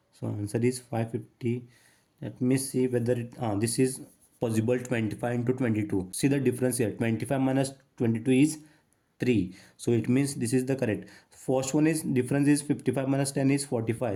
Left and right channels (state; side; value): identical; both; correlation 1.00